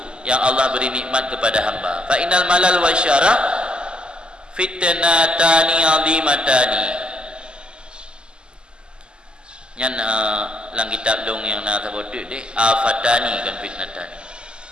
yang Allah beri nikmat kepada hamba. Fa innal malal wasyarah fitnatani azimatani. Yang lang kitab dong yang nak sebut deh, afatani kan fitnatani.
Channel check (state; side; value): late; left; 0.048 ms